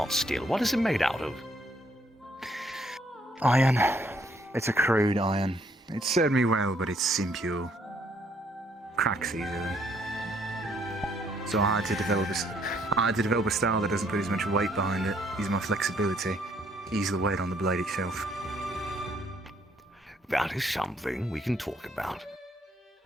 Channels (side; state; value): both; normal; correlation 0.68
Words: steel. What is it made out of? Iron. It's a crude iron. It served me well, but it's impure. Cracks easily. So I had to develop a style that doesn't put as much weight behind it. Use my flexibility. Ease the weight on the blade itself. That is something we can talk about.